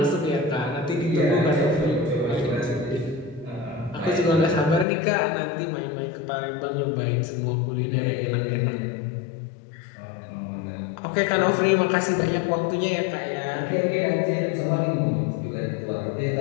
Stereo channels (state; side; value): drops out; right; at 4.9 s